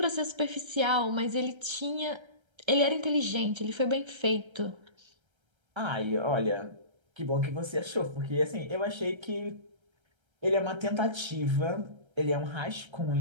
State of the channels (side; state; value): left; late; 1.3 ms